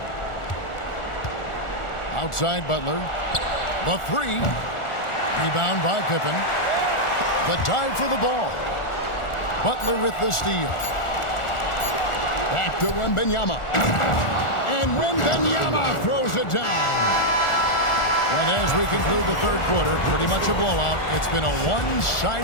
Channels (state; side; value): late; right; 1.4 ms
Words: Outside Butler. The 3. Rebound by Pippen. The dive for the ball. Butler with the steal. Back to Wembanyama. And Wembanyama throws it down. And as we conclude the third quarter, pretty much a blowout. It's been a